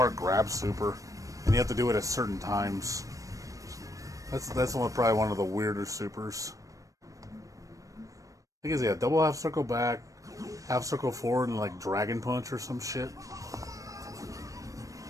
grab super, and you have to do it at certain times. That's probably one of the weirder supers. I think it's, yeah, double half circle back, half circle forward, and like dragon punch or some shit.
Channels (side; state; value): left; late; 0.16 ms